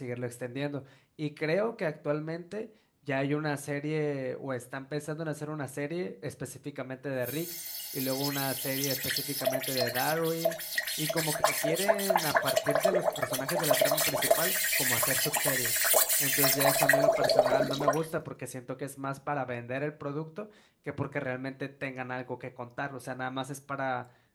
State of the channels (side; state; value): both; identical; correlation 1.00